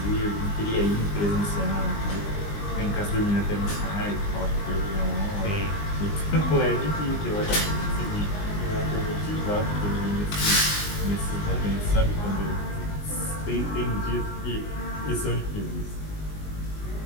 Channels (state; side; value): late; right; 20 ms